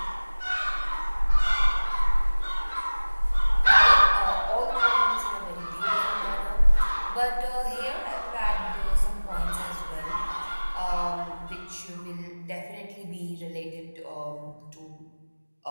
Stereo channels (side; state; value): both; inverted; correlation -1.00